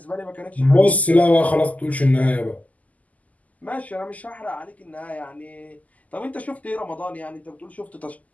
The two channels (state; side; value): late; right; 0.075 ms